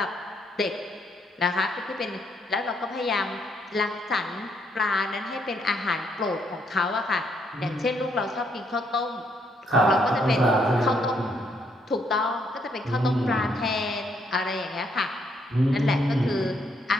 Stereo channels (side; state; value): both; normal; correlation 0.72